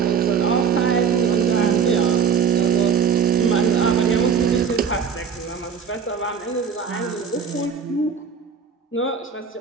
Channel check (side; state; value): left; quieter; 6.8 dB